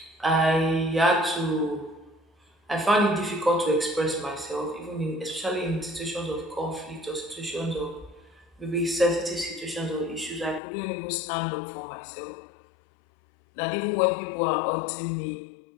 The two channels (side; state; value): right; drops out; at 10.6 s